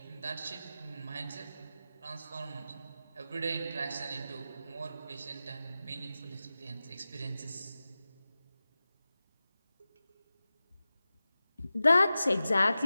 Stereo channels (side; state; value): both; inverted; correlation -0.95